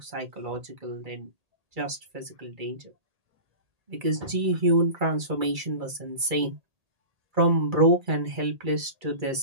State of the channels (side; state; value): left; late; 2.3 ms